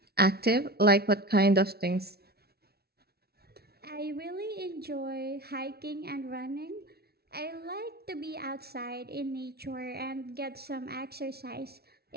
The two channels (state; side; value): late; left; 0.45 ms